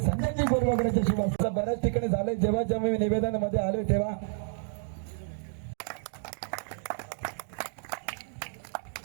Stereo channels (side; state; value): left; silent; digital silence